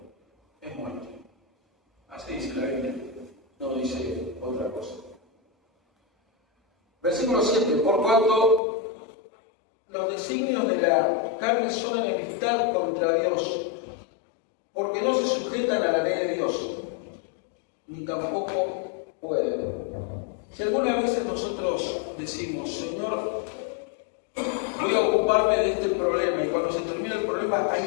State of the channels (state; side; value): drops out; right; at 8.6 s